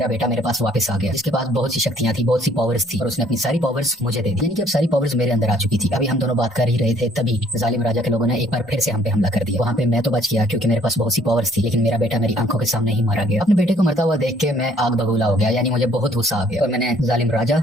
बेटा मेरे पास वापस आ गया जिसके पास बहुत सी शक्तियां थी, बहुत सी पावर्स थी और उसने अपनी सारी पावर्स मुझे दे दी, यानी कि अब सारी पावर्स मेरे अंदर आ चुकी थी। अभी हम दोनों बात कर ही रहे थे तभी जालिम राजा के लोगों ने एक बार फिर से हम पे हमला कर दिया। वहाँ पे मैं तो बच गया क्योंकि मेरे पास बहुत सी पावर्स थी, लेकिन मेरा बेटा मेरी आंखों के सामने ही मारा गया। अपने बेटे को मरता हुआ देख के मैं आग बबूला हो गया, यानी मुझे बहुत गुस्सा आ गया और मैंने जालिम राजा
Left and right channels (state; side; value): normal; both; correlation 0.61